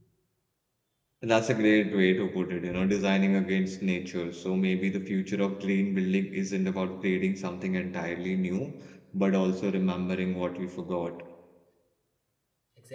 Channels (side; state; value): both; identical; correlation 1.00